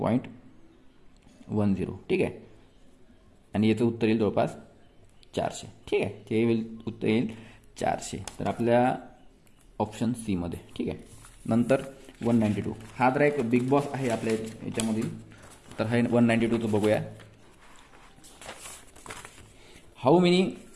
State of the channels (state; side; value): identical; both; correlation 1.00